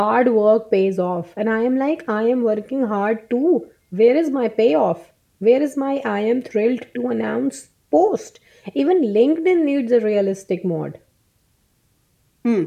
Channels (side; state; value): both; identical; correlation 1.00